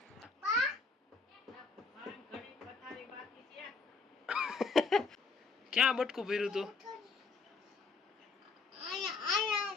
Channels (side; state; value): right; quieter; 4.4 dB